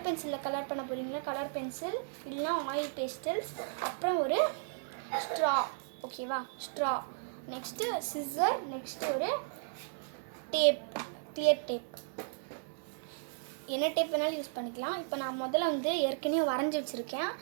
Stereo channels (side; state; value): left; silent; 55 dB below the other